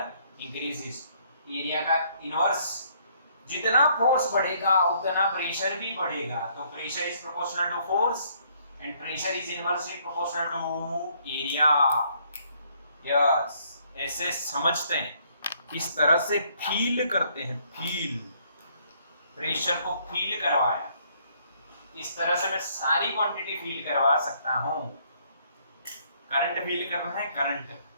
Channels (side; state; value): both; inverted; correlation -0.66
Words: increases. Area का इनवर्स, जितना फोर्स बढ़ेगा उतना प्रेशर भी बढ़ेगा। तो pressure is proportional to force and pressure is inversely proportional to area. Yes, ऐसे समझते हैं, इस तरह से फील करते हैं। फील, प्रेशर को फील करवाया, इस तरह से मैं सारी क्वांटिटी फील करवा सकता हूं। करंट फील करना है, करंट।